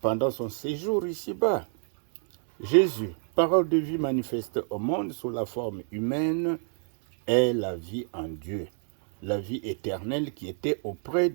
pendant son séjour ici-bas. Jésus, parole de vie manifeste au monde sous la forme humaine, est la vie en Dieu, la vie éternelle qui était auprès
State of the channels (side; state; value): left; silent; 59 dB below the other